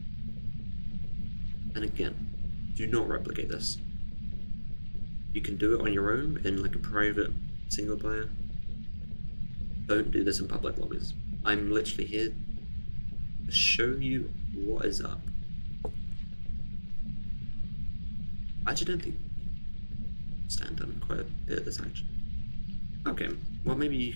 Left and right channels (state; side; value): inverted; both; correlation -1.00